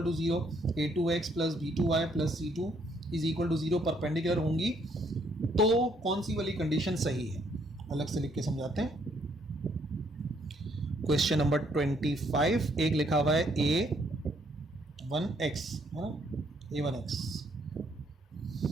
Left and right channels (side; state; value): both; normal; correlation 0.68